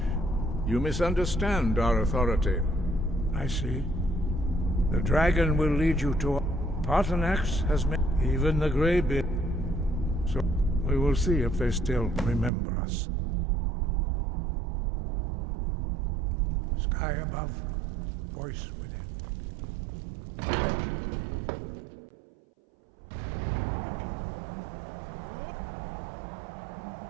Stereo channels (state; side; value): drops out; left; at 12.5 s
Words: You misunderstand our authority. I see. The dragon will lead you to... Paarthurnax has made... Even the Greybeard. So we will see if they still remember us. Sky above, voice within.